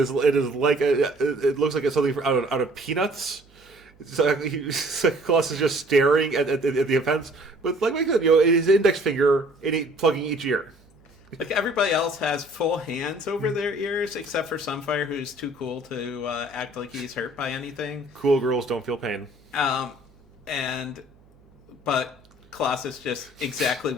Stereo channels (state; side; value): noise; right; hum, 29 dB below the sound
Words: like it looks like it's something out of Peanuts. Colossus just staring at the offense with, like I said, his index finger plugging each ear. Like, everybody else has full hands over their ears, except for Sunfire, who's too cool to act like he's hurt by anything. Cool girls don't feel pain. Um, but Colossus just exactly